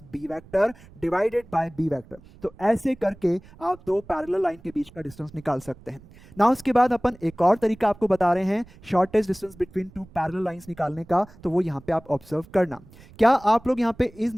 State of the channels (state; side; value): noise; right; rumble, 23 dB below the sound